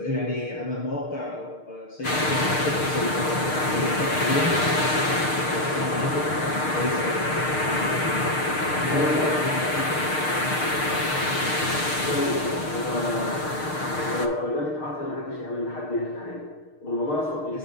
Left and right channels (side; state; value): right; late; 6.6 ms